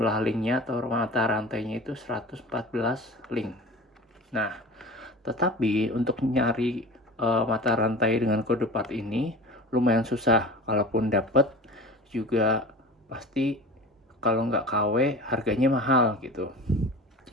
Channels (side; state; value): both; normal; correlation 0.36